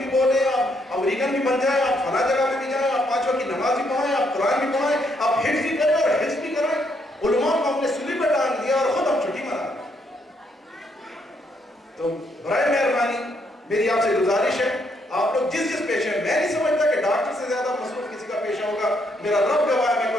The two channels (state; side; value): normal; both; correlation 0.74